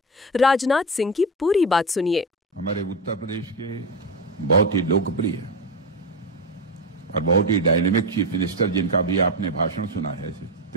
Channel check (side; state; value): both; normal; correlation 0.16